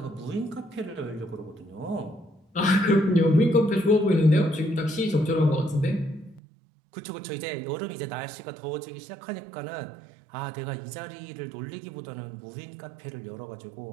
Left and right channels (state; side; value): drops out; left; at 6.4 s